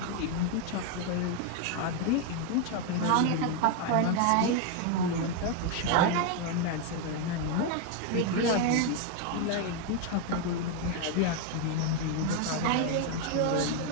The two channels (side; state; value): both; different; correlation 0.01